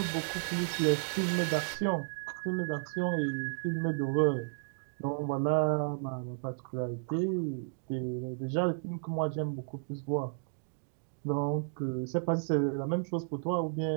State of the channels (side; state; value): left; silent; digital silence